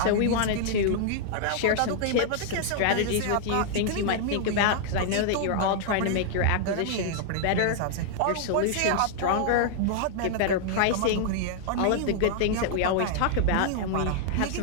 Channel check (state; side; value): different; both; correlation -0.01